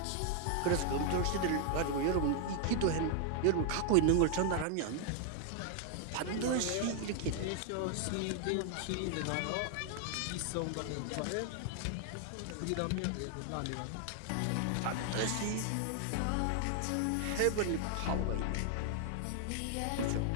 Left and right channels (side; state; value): both; different; correlation 0.00